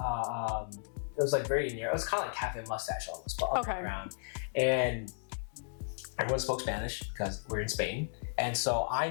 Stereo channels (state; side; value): silent; right; digital silence